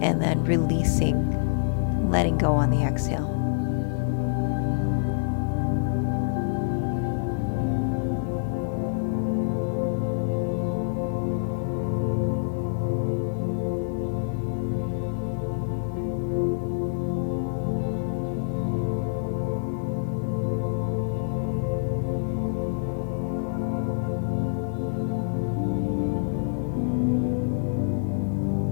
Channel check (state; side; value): silent; right; digital silence